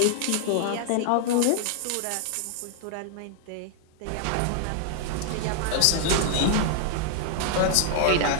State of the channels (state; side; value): different; both; correlation 0.00